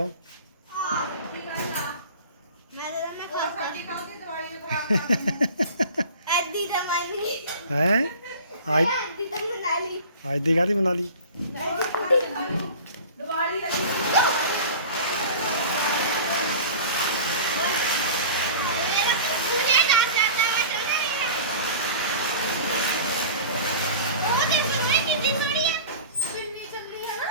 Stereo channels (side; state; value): both; inverted; correlation -0.39